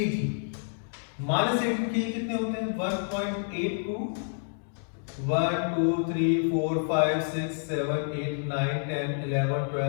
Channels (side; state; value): right; silent; digital silence